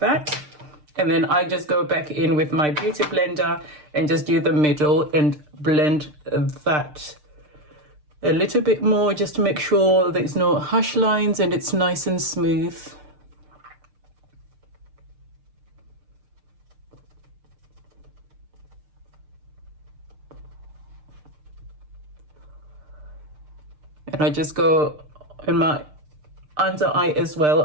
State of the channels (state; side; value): late; left; 6.6 ms